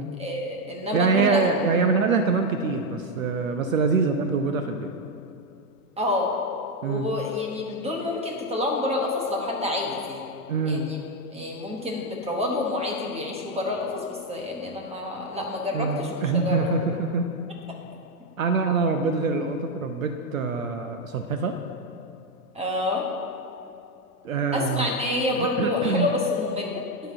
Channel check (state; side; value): normal; both; correlation 0.06